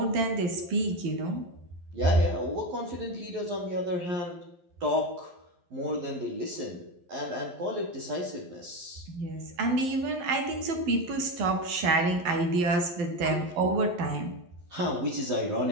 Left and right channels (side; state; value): left; late; 11 ms